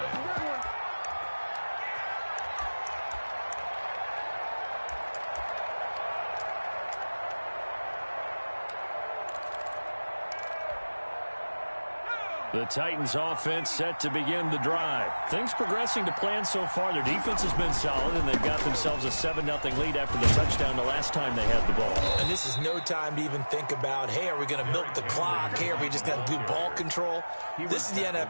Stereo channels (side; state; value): both; inverted; correlation -1.00